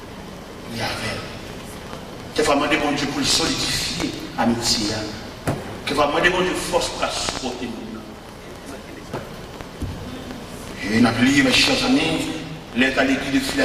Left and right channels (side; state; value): both; identical; correlation 1.00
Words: Quelquefois, demander bon Dieu pour le solidifier l'amitié. Quelquefois, demander bon Dieu force pour la supporter. Et on a oublié, mes chers amis, l'état de l'église de